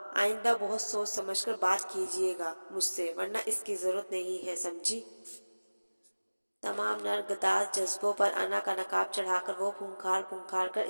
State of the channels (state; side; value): inverted; both; correlation -1.00